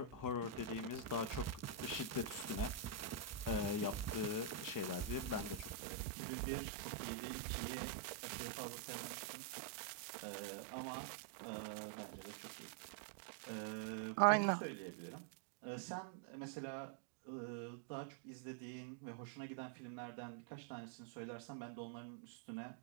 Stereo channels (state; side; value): drops out; left; at 5.8 s